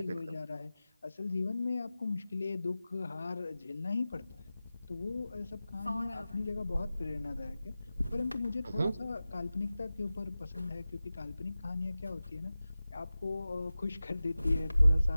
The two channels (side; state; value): both; inverted; correlation -0.96